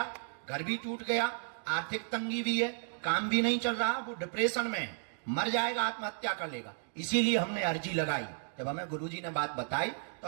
घर भी टूट गया, आर्थिक तंगी भी है, काम भी नहीं चल रहा, वो डिप्रेशन में है, मर जाएगा, आत्महत्या कर लेगा। इसीलिए हमने अर्जी लगाई। जब हमें गुरुजी ने बात बताई तो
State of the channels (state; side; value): silent; left; digital silence